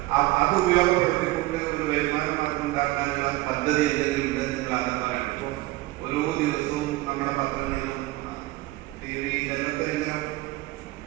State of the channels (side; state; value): left; quieter; 18.8 dB